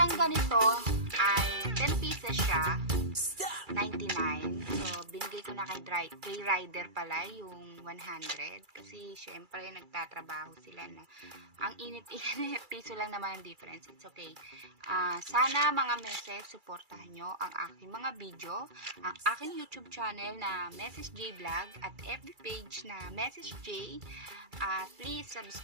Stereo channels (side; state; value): left; late; 2.3 ms